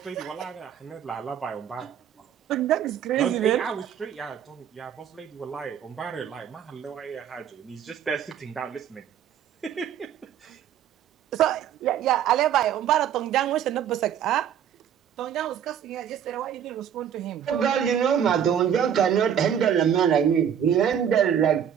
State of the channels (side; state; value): left; quieter; 9.1 dB